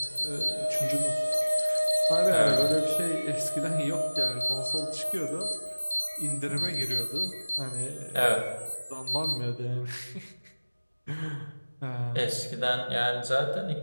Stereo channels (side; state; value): both; inverted; correlation -1.00